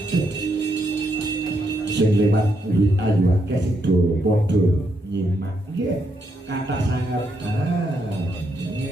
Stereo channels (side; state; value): both; normal; correlation 0.78